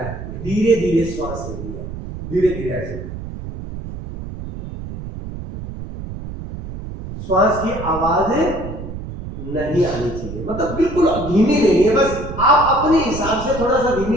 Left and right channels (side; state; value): right; noise; rumble, 9 dB below the sound